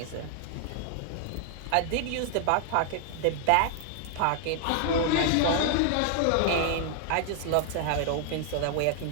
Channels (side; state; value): both; different; correlation 0.00